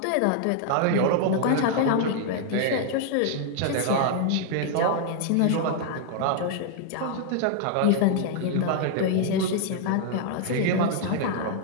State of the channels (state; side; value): different; both; correlation 0.00